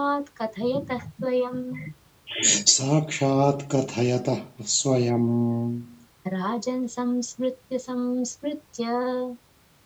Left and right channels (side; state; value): both; identical; correlation 1.00